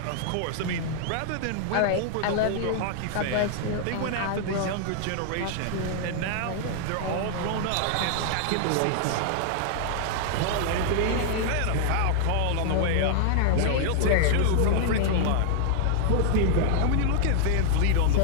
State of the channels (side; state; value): both; different; correlation -0.01